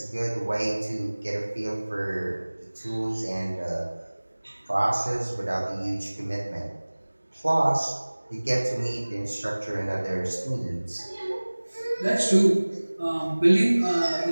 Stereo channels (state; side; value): inverted; both; correlation -1.00